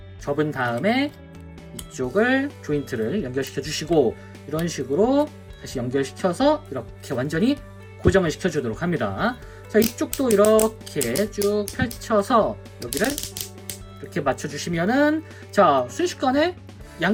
접은 다음에 이쪽을 조인트를 연결시켜 주시고, 이런 식으로 다시 연결시켜서 이렇게 완전히 고정을 시켜주도록 합니다. 자, 이쪽도 이렇게 쭉 펼쳐서 여기를 이렇게 맞춰주시면은, 자, 순식간에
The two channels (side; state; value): both; identical; correlation 1.00